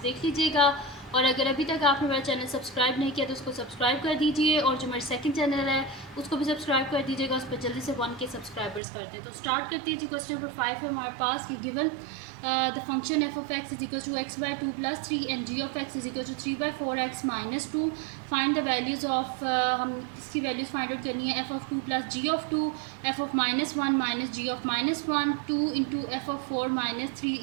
देख लीजिएगा। और अगर अभी तक आपने मेरा चैनल सब्सक्राइब नहीं किया तो उसको सब्सक्राइब कर दीजिए, और जो मेरा सेकंड चैनल है उसको भी सब्सक्राइब कर दीजिएगा, उस पर जल्दी से 1K सब्सक्राइबर्स करते हैं। तो स्टार्ट करते हैं जी। क्वेश्चन नंबर 5 है हमारे पास कि given the function f of x is equal to x by 2 plus 3 and g of x is equal to 3 by 4x minus 2. Find the values of हम इसकी वैल्यूज़ फाइंड आउट करनी है। f of 2 plus g of 2, f of minus 1 minus g of minus 1, 2 into f of 4 minus 3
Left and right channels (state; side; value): drops out; left; at 8.8 s